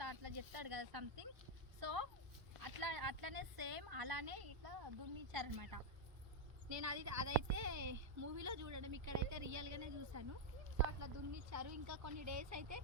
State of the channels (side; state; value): left; late; 1.3 ms